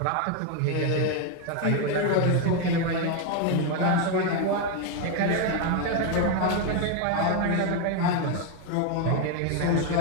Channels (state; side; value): different; both; correlation 0.02